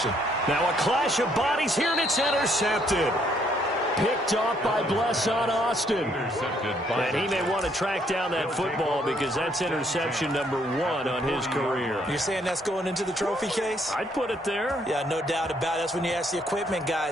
Now a clash of bodies here, and it's intercepted. Picked off by Blesson Austin. And he may want to track down that football because that's interception number 1 on his career. You're saying that's going into the trophy case? I'd put it there. Yeah, no doubt about it. That's when you ask the equipment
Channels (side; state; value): both; normal; correlation 0.69